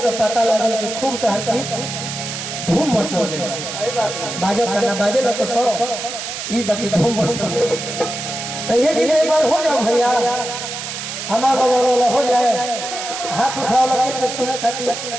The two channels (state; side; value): noise; right; hiss, 6 dB below the sound